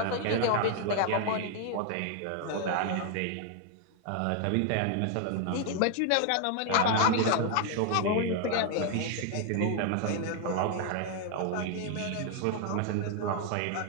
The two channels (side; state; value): both; different; correlation 0.00